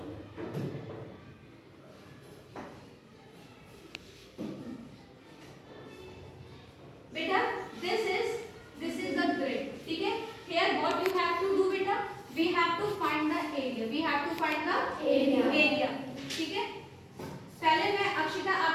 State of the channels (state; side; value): identical; both; correlation 1.00